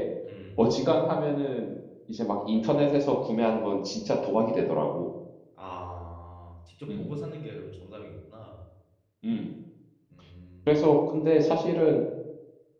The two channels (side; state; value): both; identical; correlation 1.00